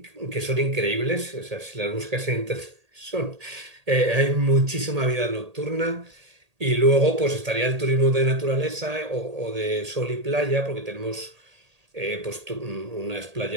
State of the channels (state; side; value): late; left; 1.8 ms